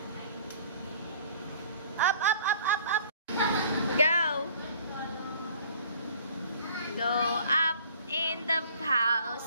Up, up, up, up, up. Go. Go up in the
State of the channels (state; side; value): inverted; both; correlation -0.53